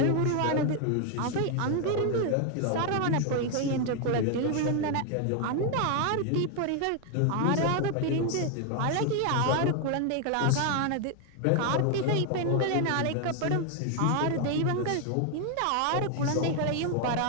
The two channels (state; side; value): different; both; correlation 0.01